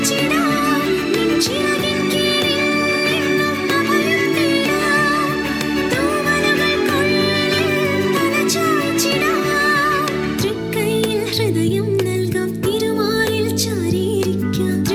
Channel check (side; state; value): both; identical; correlation 1.00